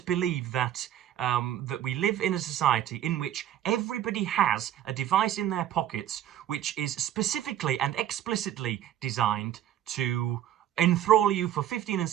believe that we live in a society in which everybody has a device in their pockets which is specifically and explicitly designed to enthrall you for 15 and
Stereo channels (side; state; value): left; quieter; 11.4 dB